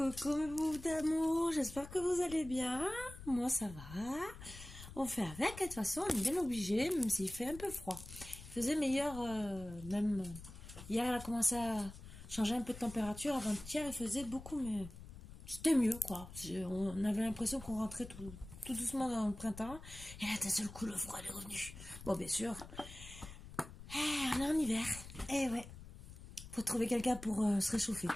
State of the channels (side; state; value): left; noise; rumble, 14 dB below the sound